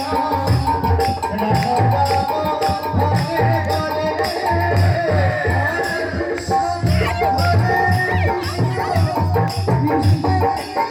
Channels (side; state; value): both; identical; correlation 1.00